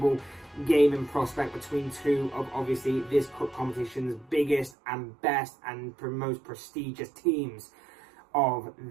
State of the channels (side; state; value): left; drops out; at 4.8 s